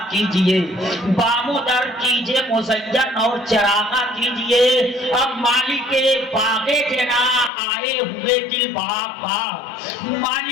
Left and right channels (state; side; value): drops out; right; at 7.5 s